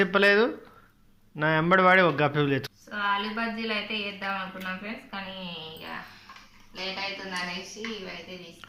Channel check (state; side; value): identical; both; correlation 1.00